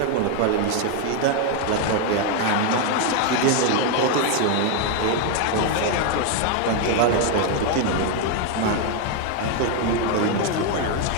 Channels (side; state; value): both; different; correlation 0.01